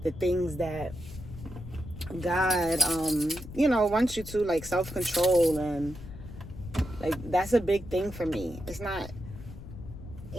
the things that God, wants you to, like self-control, and like, that's a big thing for me. It's not,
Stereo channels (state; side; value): noise; left; rumble, 13 dB below the sound